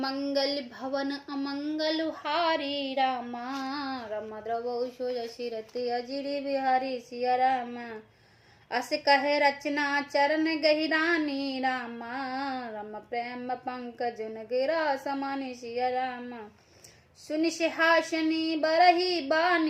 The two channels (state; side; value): identical; both; correlation 1.00